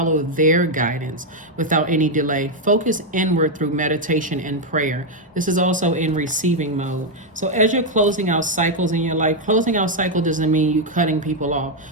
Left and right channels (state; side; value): normal; both; correlation 0.02